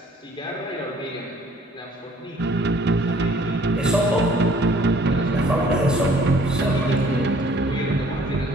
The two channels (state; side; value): normal; both; correlation 0.57